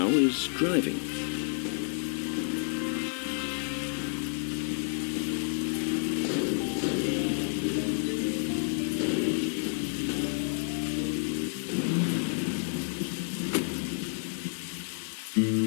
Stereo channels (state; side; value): silent; right; 58 dB below the other